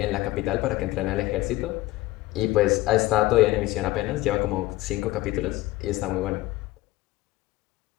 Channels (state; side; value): quieter; right; 17.9 dB